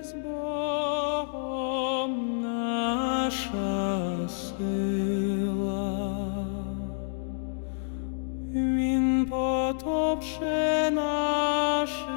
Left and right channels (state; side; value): silent; right; digital silence